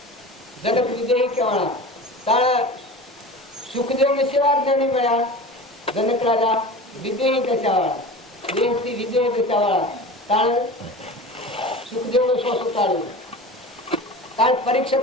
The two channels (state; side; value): normal; both; correlation 0.34